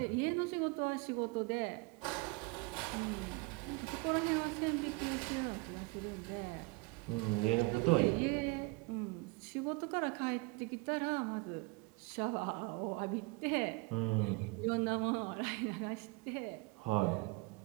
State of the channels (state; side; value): quieter; left; 26.7 dB